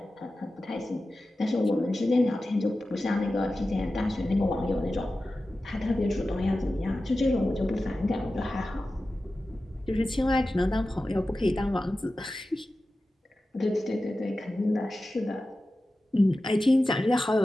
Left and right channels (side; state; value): both; normal; correlation 0.94